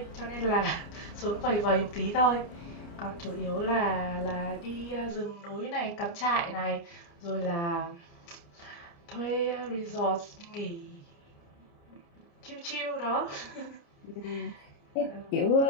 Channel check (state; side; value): late; right; 29 ms